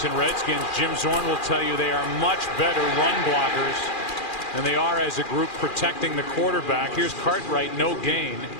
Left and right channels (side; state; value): right; late; 2.4 ms